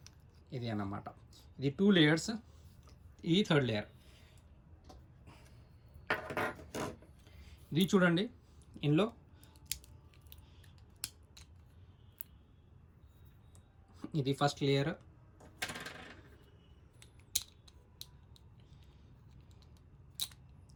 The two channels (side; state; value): both; identical; correlation 1.00